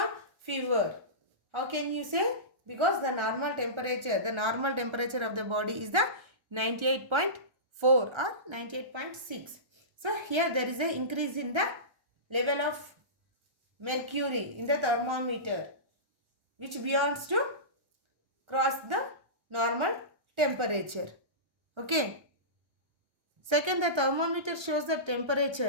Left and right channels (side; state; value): left; late; 1.3 ms